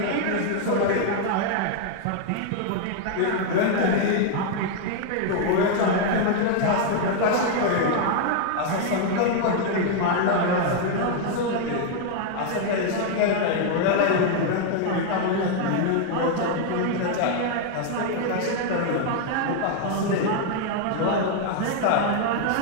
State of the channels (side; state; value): both; different; correlation 0.00